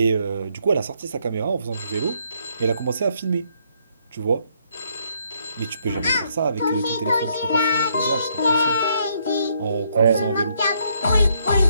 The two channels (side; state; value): both; inverted; correlation -0.71